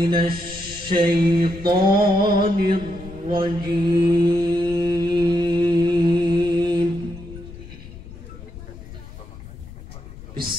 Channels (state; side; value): noise; left; rumble, 15 dB below the sound